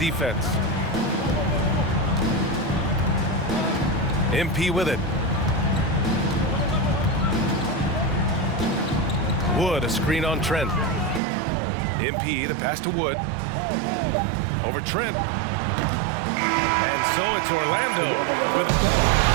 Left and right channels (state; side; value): drops out; left; at 11.2 s